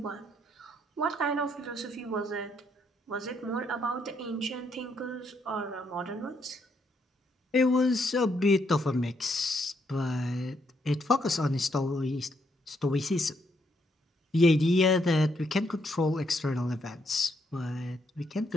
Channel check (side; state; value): both; normal; correlation 0.75